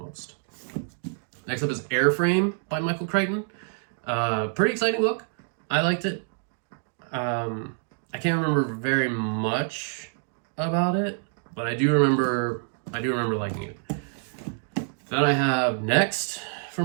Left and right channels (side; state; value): left; silent; 60 dB below the other